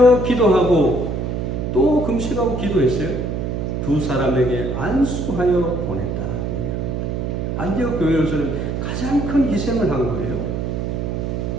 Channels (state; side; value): noise; right; hum, 2 dB below the sound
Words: 기도하고, 또 금식하고 기도했어요. 두 사람에게 안수하여 보냈다. 안디옥 교회로서는 가장 큰 희생을 한 거예요.